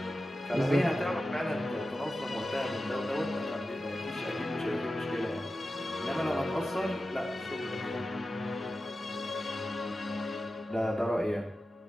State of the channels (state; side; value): normal; both; correlation 0.93